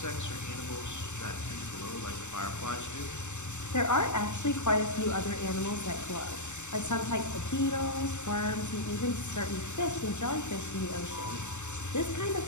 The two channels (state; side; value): late; right; 0.84 ms